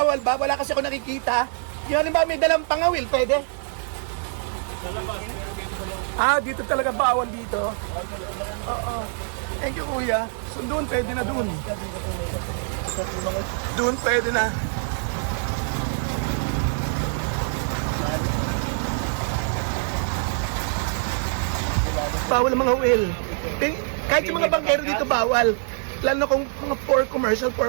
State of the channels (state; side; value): silent; left; 61 dB below the other